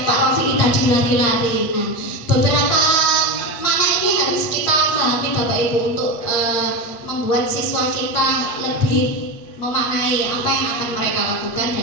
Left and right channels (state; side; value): late; right; 8.8 ms